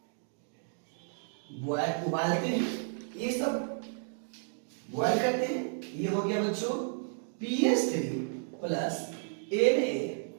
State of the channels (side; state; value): left; silent; 56 dB below the other